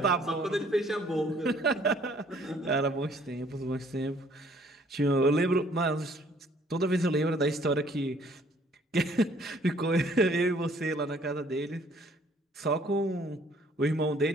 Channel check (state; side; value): normal; both; correlation 0.61